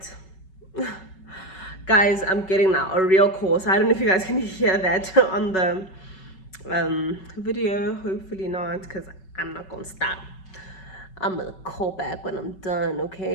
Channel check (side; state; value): right; late; 5.3 ms